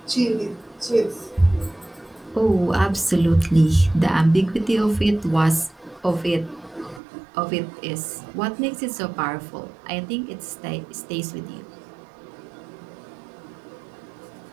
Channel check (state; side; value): drops out; left; at 7.0 s